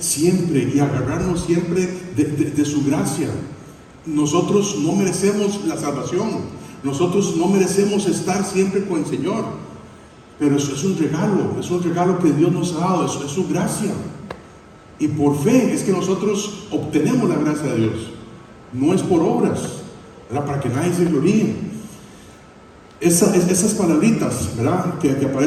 y agarrarnos siempre de su gracia. Nosotros no merecemos la salvación, nosotros no merecemos estar siempre con el Señor, pero eso es un regalo que Dios nos ha dado, eso es su gracia. Y por fe es que nosotros obtenemos la gracia de Dios, no es por obras, ¿verdad? Para que nadie se gloríe. Esas palabritas, ¿verdad? que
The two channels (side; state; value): both; identical; correlation 1.00